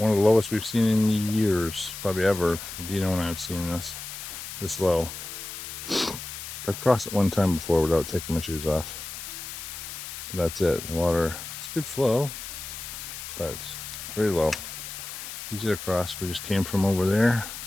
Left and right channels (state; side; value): noise; left; hiss, 9 dB below the sound